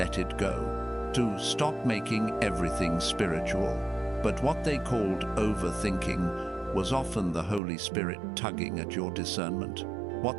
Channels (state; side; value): drops out; left; at 7.6 s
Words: it go, to stop making everything spiritual. But what they called overthinking was often the Holy Spirit tugging at your discernment.